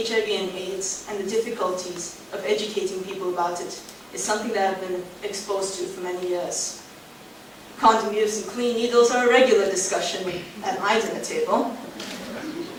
and AIDS and the difficulties of educating people about it is something that I've been exposed to for many years. Condom use and clean needles are a regular discussion at my dinner table.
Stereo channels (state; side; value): identical; both; correlation 1.00